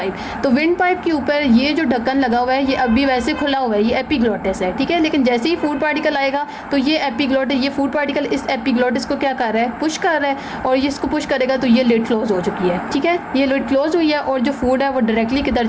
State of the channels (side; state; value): both; identical; correlation 1.00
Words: तो विंड पाइप के ऊपर ये जो ढक्कन लगा हुआ है ये अभी वैसे खुला हुआ है, ये एपिग्लोटिस है, ठीक है। लेकिन जैसे ही फूड पार्टिकल आएगा तो ये एपिग्लोटिस, ये फूड पार्टिकल इस एपिग्लोटिस को क्या कर रहा है, पुश कर रहा है, और ये इसको पुश करेगा तो ये लिड क्लोज हो चुकी है, ठीक है। ये लिड क्लोज हुई है और जो फूड है वो डायरेक्टली किधर